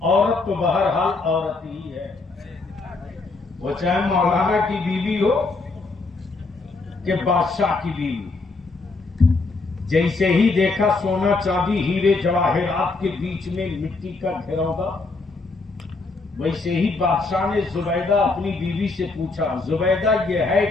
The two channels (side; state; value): right; quieter; 3.7 dB